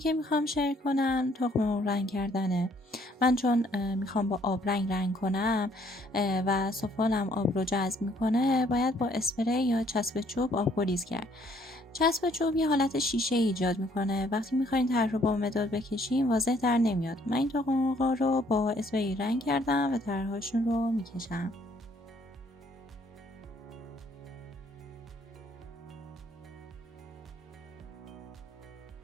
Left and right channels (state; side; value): normal; both; correlation 0.64